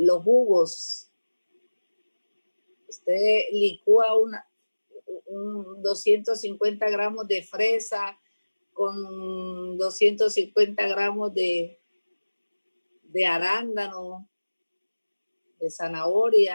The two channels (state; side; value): inverted; both; correlation -1.00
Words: jugos. Usted licúa un 250 gramos de fresa con 250 gramos de arándano, de